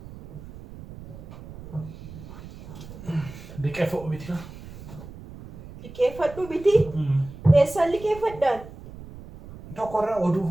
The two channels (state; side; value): noise; right; rumble, 15 dB below the sound